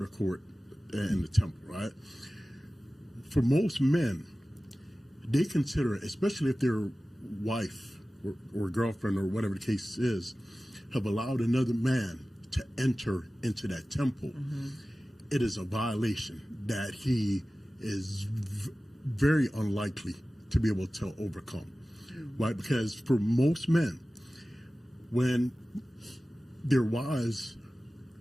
court, and the temple, right? For most men, they consider, especially if their wife or girlfriend or whatever the case is, have allowed another man to enter into that temple, it is a violation that he is very unlikely to be able to overcome, right? Because for most men, when their wives,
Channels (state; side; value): normal; both; correlation 0.96